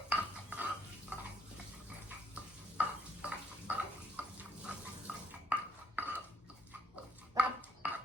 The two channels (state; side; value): normal; both; correlation 0.71